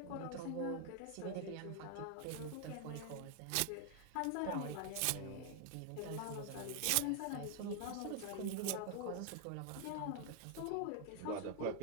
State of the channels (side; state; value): both; different; correlation 0.00